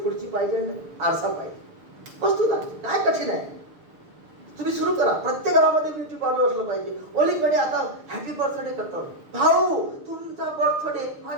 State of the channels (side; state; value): left; late; 6.7 ms